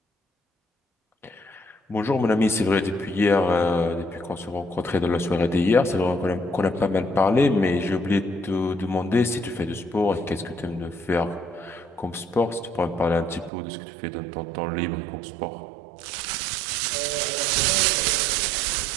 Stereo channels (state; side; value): drops out; left; at 13.5 s